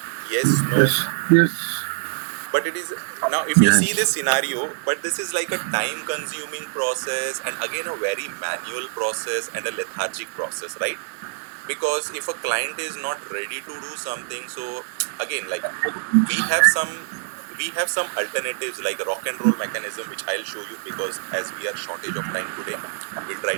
Yes, no. Yes. Yes. But it is now, if you see Yes. this scenario, but this is like a time consuming process, and again a very manual process and a lethargic process, right? Because if a client is not ready to do something, so again, like we have some we have some alternatives like a rock and roll mechanism, which I'll show you, because as we are shortage of time today, we'll try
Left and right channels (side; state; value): left; silent; digital silence